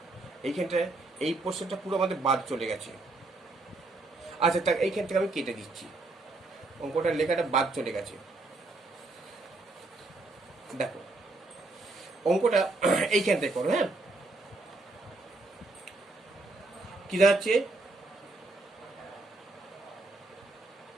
এইখানটায় এই পোর্শনটা পুরো আমাদের বাদ চলে গেছে। আচ্ছা তা এইখান থেকে আমি কেটে দিচ্ছি, অঙ্কটার লেখাটা বাদ চলে গেছে। দেখো অঙ্কটা এইখান থেকে করো। হ্যাঁ, কি দাঁড়াচ্ছে,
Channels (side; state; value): left; quieter; 3.2 dB